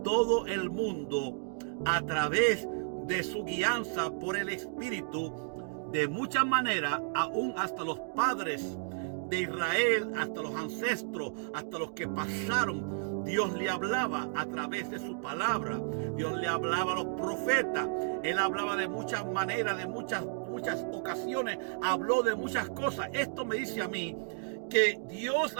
el mundo a través de su guianza por el Espíritu, de muchas maneras, aún hasta los padres de Israel, hasta los ancestros, hasta los que pasaron. Dios le hablaba a través de su palabra. Dios le hablaba a los profetas. Él hablaba de muchas maneras, de muchas ocasiones. Habló de muchas cosas. Esto me dice a mí que Dios,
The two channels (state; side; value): silent; left; digital silence